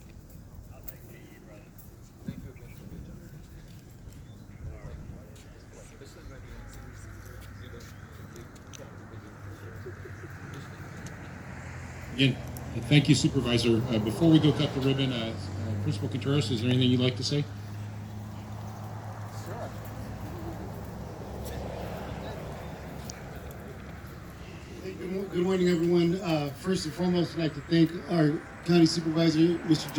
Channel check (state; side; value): identical; both; correlation 1.00